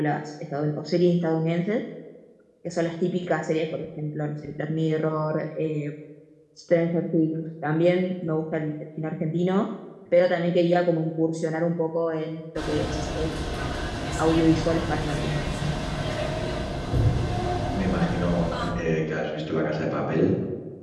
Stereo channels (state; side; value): identical; both; correlation 1.00